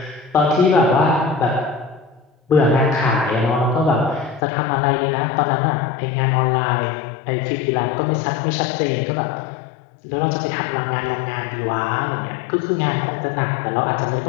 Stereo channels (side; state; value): right; drops out; at 4.4 s